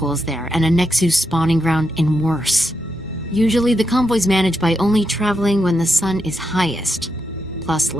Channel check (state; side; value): normal; both; correlation 0.84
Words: there, and a Nexus spawning ground in worse. Usually the convoy's managed by only traveling when the sun is highest. Plus